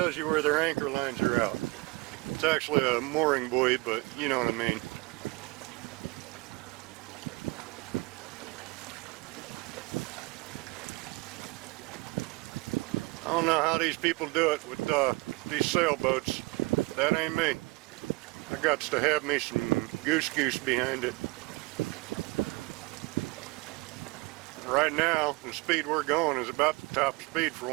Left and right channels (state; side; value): quieter; left; 25.1 dB